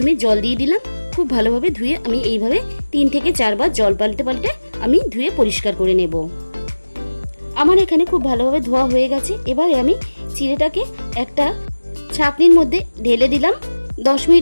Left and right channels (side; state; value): both; inverted; correlation -1.00